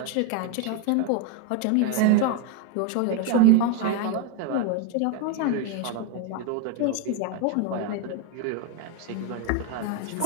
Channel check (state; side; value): different; both; correlation 0.01